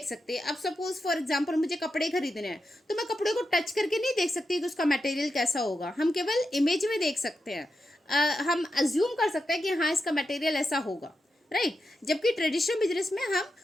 सकते। अब सपोज फॉर एग्जांपल मुझे कपड़े खरीदने हैं, तो मैं कपड़े को टच करके नहीं देख सकती कि उसका मटेरियल कैसा होगा, हम केवल इमेज में देख सकते हैं। हम अज्यूम कर सकते हैं कि हाँ इसका मटेरियल ऐसा होगा, राइट। जबकि ट्रेडिशनल बिजनेस में हम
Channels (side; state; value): both; normal; correlation 0.88